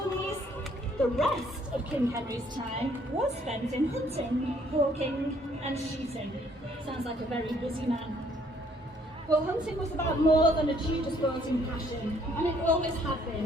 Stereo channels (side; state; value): both; normal; correlation 0.64